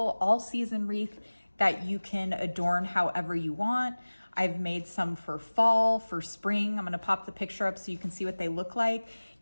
all-season wreath that you can adorn however you want. I've made some for fall, for spring. I'm going to pop the picture up so you can see what they look like.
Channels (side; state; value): both; inverted; correlation -1.00